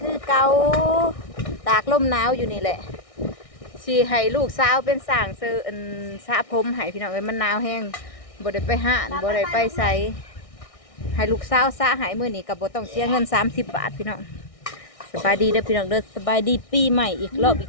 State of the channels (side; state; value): right; late; 1.6 ms